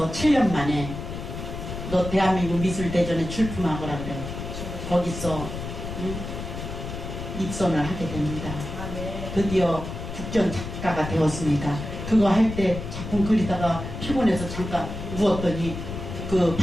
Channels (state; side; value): noise; left; rumble, 7 dB below the sound